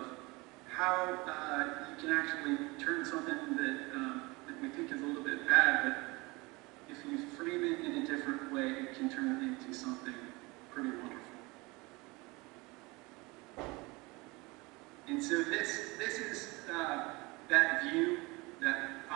how you can actually turn something that we think is a little bit bad, but if you frame it in a different way, it can turn it into something pretty wonderful. And so this is that view, that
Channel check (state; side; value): quieter; left; 24.5 dB